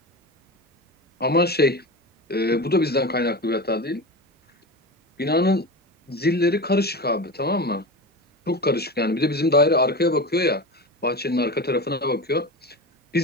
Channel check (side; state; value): both; normal; correlation 0.26